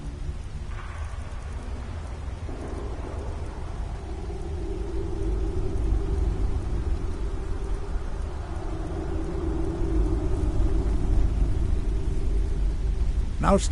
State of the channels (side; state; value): both; identical; correlation 1.00